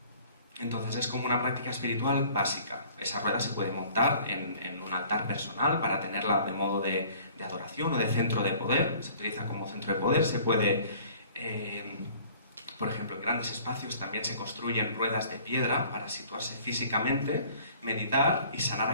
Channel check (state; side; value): inverted; both; correlation -0.52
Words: Entonces es como una práctica espiritual básica. Esa rueda se puede montar en un altar personal para tenerla de modo de adoración o de centro de poder. Se utiliza como centro de poder. Se puede, por ejemplo, en grandes espacios también se construyen ruedas de piedra para situarse físicamente, meditar y sanar